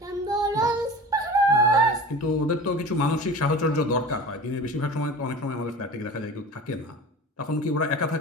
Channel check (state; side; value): normal; both; correlation 0.36